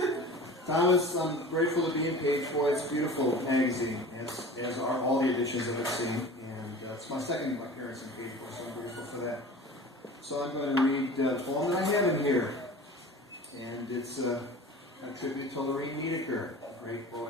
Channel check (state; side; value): normal; both; correlation 0.39